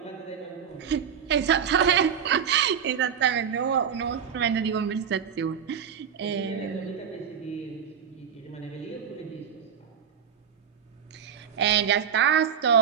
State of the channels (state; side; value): quieter; left; 8.0 dB